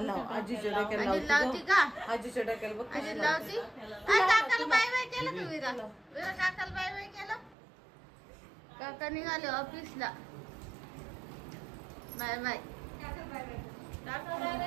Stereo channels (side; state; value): left; drops out; at 7.6 s